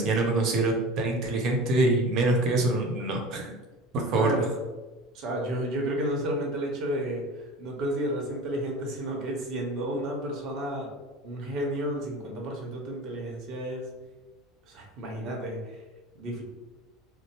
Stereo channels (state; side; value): normal; both; correlation 0.36